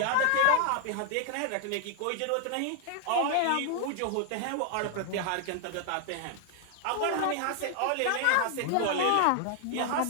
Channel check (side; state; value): both; different; correlation 0.00